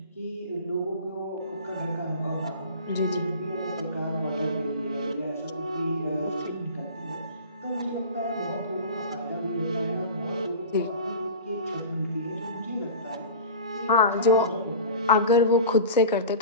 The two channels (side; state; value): both; inverted; correlation -0.35